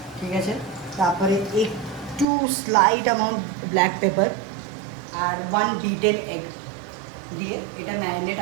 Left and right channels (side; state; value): left; drops out; at 2.2 s